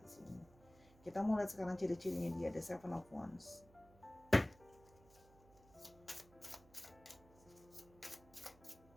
di sini, kita mau lihat sekarang ciri-cirinya dia. Ada Seven of Wands,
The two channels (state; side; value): noise; right; hum, 25 dB below the sound